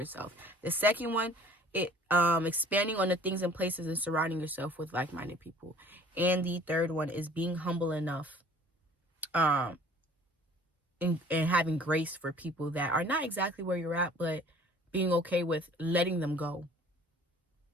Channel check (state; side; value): normal; both; correlation 0.51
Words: The second one, expanding on the things and places and surrounding yourself with like-minded people. And the third one is being humble enough and having grace for people that are not exactly where you're at, but being okay with letting them go